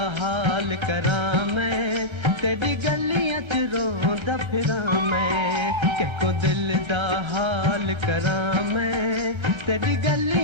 हाल करां मैं तेरी गलियां च रोंदा फिरां मैं को दिल दा हाल करां मैं तेरी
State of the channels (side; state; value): left; late; 1.3 ms